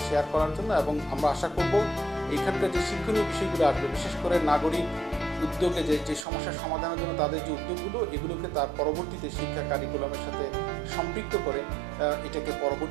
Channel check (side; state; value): left; drops out; at 6.2 s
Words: শেয়ার করার জন্য এবং আমরা আশা করব এইখানকার যে শিক্ষণীয় বিষয়গুলো আসবে বিশেষ করে নাগরিক উদ্যোগে যে সমস্যার সমাধানের জন্য তাদের যে উদ্যোগগুলো এগুলোকে তার পরবর্তীতে শিক্ষা কারিকুলামের সাথে সম্পৃক্ত করে এটাকে